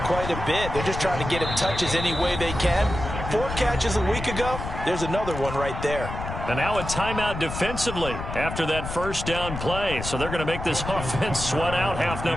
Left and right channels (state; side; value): noise; left; rumble, 7 dB below the sound